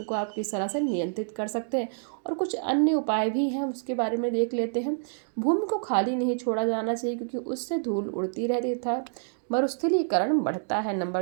को आप किस तरह से नियंत्रित कर सकते हैं, और कुछ अन्य उपाय भी हैं उसके बारे में देख लेते हैं। भूमि को खाली नहीं छोड़ा जाना चाहिए, क्योंकि उससे धूल उड़ती रहती था, मरुस्थलीकरण बढ़ता है।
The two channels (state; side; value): silent; left; digital silence